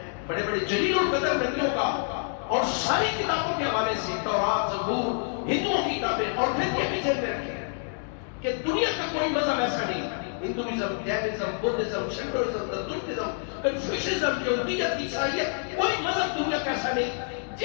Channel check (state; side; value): silent; right; 60 dB below the other